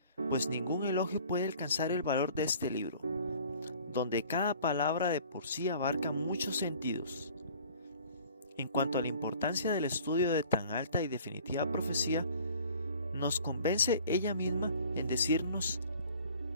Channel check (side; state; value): both; inverted; correlation -0.50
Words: pues ningún elogio puede alcanzar el valor de este libro, donde cada palabra de por sí abarca muchos sentidos. En cuanto a la importancia del estudio de tan alta y definitiva profecía, nos convence ella misma en decirnos,